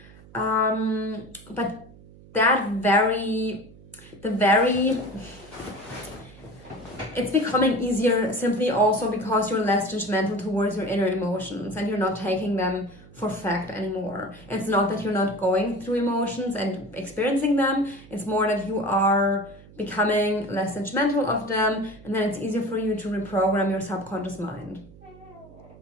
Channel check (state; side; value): noise; right; hum, 22 dB below the sound